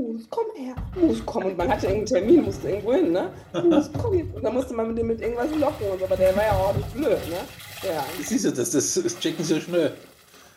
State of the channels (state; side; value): identical; both; correlation 1.00